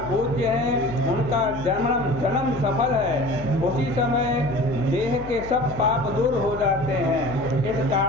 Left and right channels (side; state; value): left; noise; hum, 13 dB below the sound